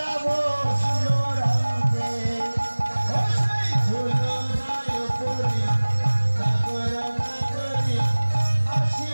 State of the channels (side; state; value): both; inverted; correlation -1.00